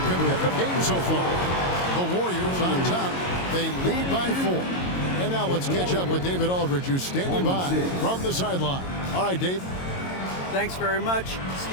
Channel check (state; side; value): late; right; 22 ms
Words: games so far. The Warriors on top. They lead by 4. And now let's catch up with David Aldridge, who's standing by from the sideline. All right, Dave. Thanks very much,